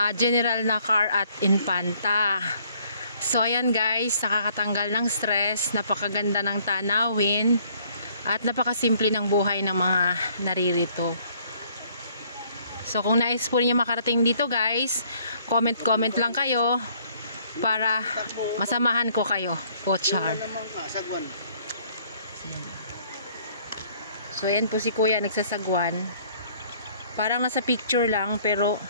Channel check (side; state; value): both; inverted; correlation -0.61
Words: General Nakar at Infanta. So ayan guys, nakakatanggal ng stress, napakaganda ng tanawin at napakasimple ng buhay ng mga naririto. So kung nais po niyo makarating dito guys, comment lang kayo para masamahan ko kayo. Pochar. So ayan po si kuya nagsasagwan. Parang nasa picture lang pero